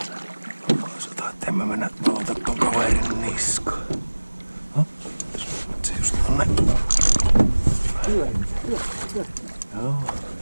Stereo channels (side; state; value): both; inverted; correlation -1.00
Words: Sanotaan, että en mä mennä valota ton kaverin niskaan. Se just on näin. Joo.